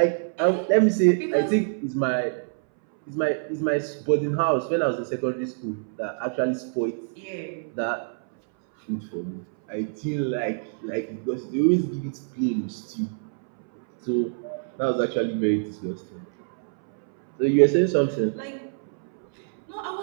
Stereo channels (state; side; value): silent; left; 60 dB below the other